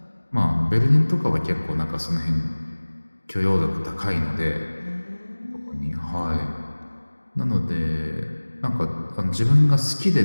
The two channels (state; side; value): inverted; both; correlation -1.00